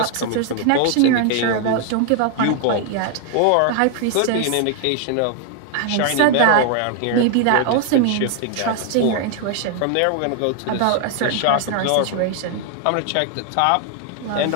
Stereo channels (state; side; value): different; both; correlation 0.00